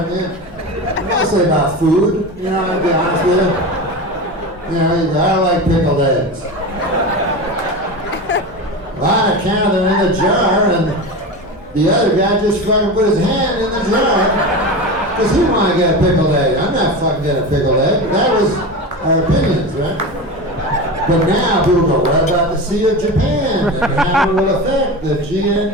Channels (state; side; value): normal; both; correlation 0.26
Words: I mean? Mostly about food, you know, I'll be honest with you. You know, you go, I don't like pickled eggs. Well, I counted them in the jar, and the other guy just fucking put his hand in the jar because he wanted to get a pickled egg. I'm not fucking getting a pickled egg. That was our opinions, right? But now people go, what about the Sea of Japan? And how it will affect the